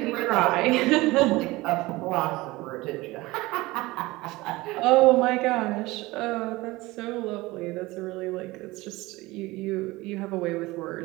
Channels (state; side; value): quieter; left; 20.5 dB